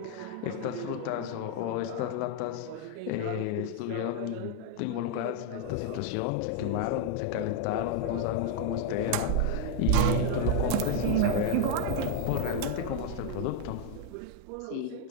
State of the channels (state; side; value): different; both; correlation 0.00